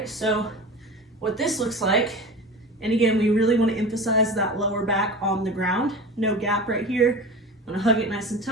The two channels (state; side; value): normal; both; correlation 0.32